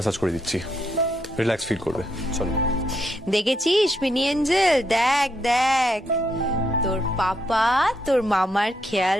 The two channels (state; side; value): normal; both; correlation 0.77